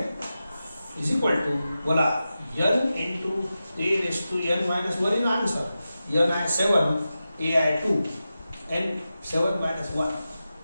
इज इक्वल टू बोला n into a raise to n minus 1 in answer. N आहे 7 ए आहे 2 n 7 minus 1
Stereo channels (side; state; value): both; inverted; correlation -0.92